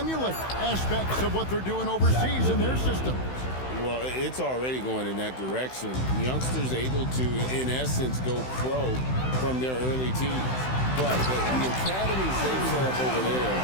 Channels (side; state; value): right; late; 16 ms